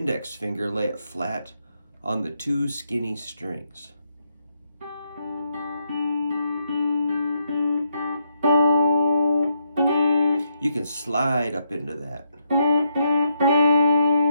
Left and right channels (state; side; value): inverted; both; correlation -0.78